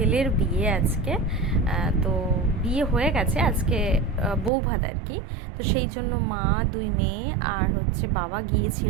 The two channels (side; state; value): left; drops out; at 4.5 s